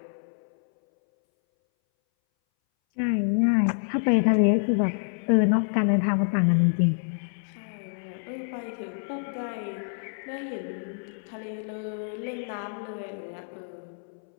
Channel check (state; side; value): silent; right; 60 dB below the other